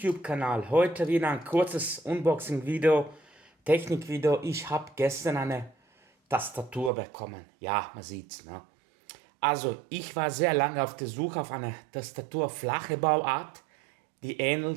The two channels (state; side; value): drops out; left; at 6.9 s